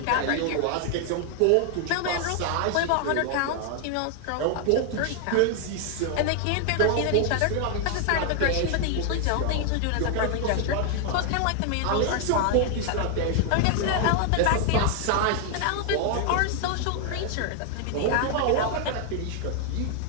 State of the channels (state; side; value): different; both; correlation 0.00